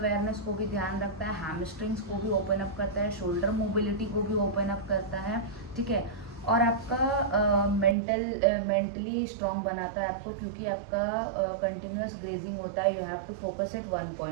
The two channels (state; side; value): drops out; left; at 8.0 s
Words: को भी ध्यान रखता है, हैमस्ट्रिंग्स को भी ओपन अप करता है, शोल्डर मोबिलिटी को भी ओपन अप करता है। ठीक है। और आपका मेंटली स्ट्रॉन्ग बनाता है आपको, क्योंकि आपका कंटिन्यूस ग्रेजिंग होता है। You have to focus at one